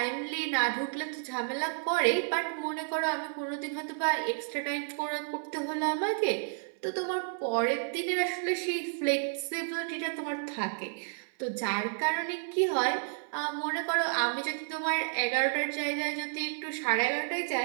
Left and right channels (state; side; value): silent; left; 57 dB below the other